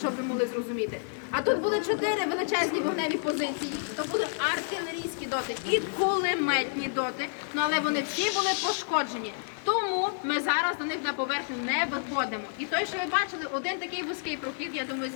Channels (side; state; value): right; silent; digital silence